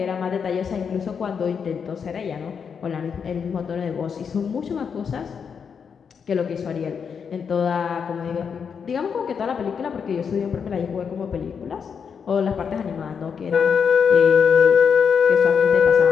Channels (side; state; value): right; quieter; 6.6 dB